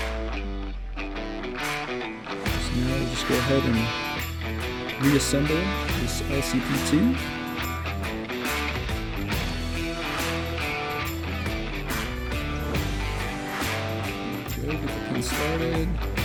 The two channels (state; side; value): identical; both; correlation 1.00